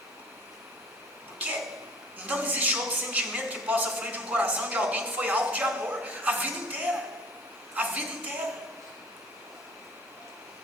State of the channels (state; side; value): normal; both; correlation 0.47